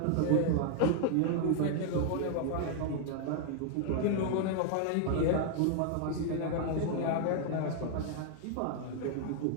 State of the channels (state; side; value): different; both; correlation 0.00